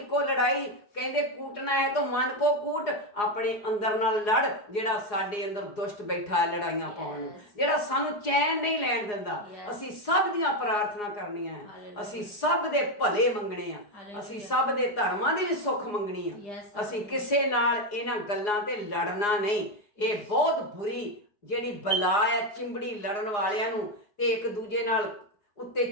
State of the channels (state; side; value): late; right; 4.8 ms